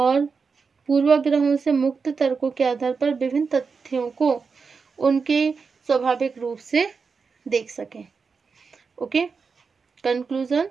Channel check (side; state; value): left; quieter; 5.1 dB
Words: पूर्वाग्रहों से मुक्त तर्कों के आधार पर विभिन्न तथ्यों को उनके स्वाभाविक रूप से देख सकें। ओके, कंक्लूजन,